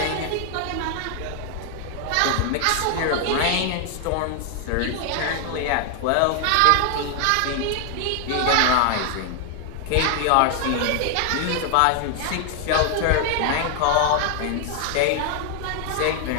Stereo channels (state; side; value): different; both; correlation 0.00